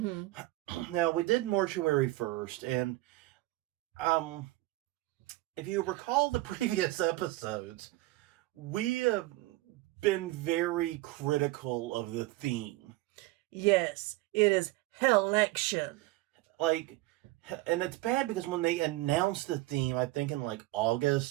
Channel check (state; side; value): quieter; left; 19.1 dB